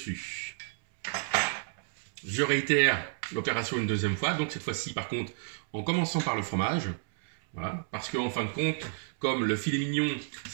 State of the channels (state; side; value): silent; left; 57 dB below the other